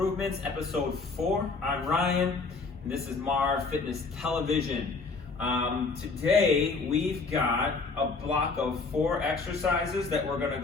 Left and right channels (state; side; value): quieter; right; 4.2 dB